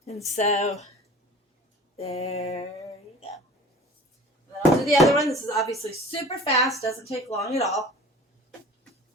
And so, there you go. And then I'll do the other one. This is obviously super fast. Doesn't take long at all.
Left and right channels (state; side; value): normal; both; correlation 0.43